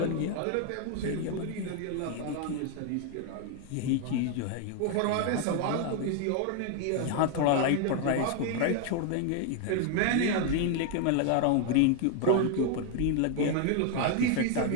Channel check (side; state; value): both; different; correlation 0.01